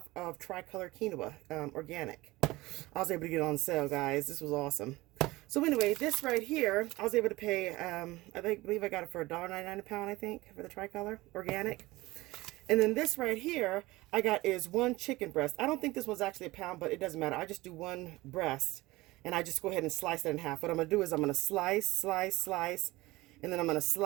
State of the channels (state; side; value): quieter; left; 19.9 dB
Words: of tricolor quinoa, organic. I was able to get it on sale, guys. This was awesome. So anyway, this right here, I was able to pay, I believe I got it for $1.99 a pound, I think, for the tricolor organic. And then this right here, I got is 1 chicken breast. I don't think this was actually a pound, but it doesn't matter. I just do 1 breast, and I just go ahead and slice it in half. What I'm going to do is I'm going to slice, and then I'm going to